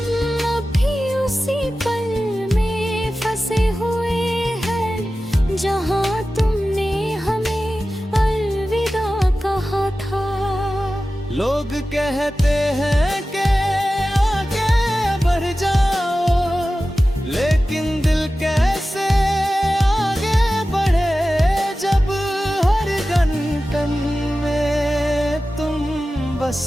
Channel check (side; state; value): both; normal; correlation 0.95